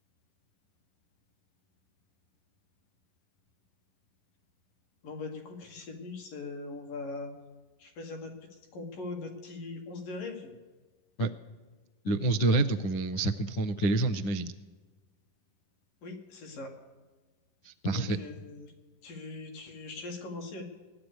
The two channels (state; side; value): late; right; 10 ms